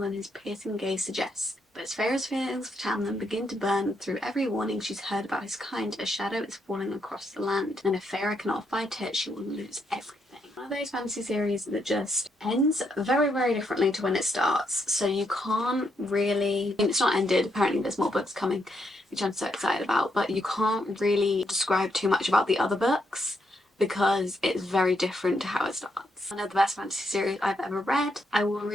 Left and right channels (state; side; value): normal; both; correlation 0.78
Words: than his piercing gaze suggests. But as Feyre's feelings for Tamlin begin to burn through every warning she's heard about his kind, a shadow is falling across the land, and if Feyre cannot fight it, she will lose everything. One of those fantasy series that just ends very, very differently to when it starts. So you can't really, I mean, it's not ended, apparently there's more books coming, which I'm so excited about, but you can't really describe too much about the other books because it's very different to how it starts. One of the best fantasy series I've ever read. I will